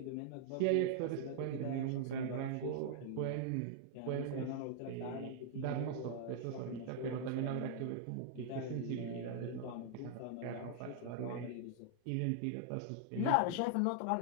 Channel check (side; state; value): both; different; correlation -0.01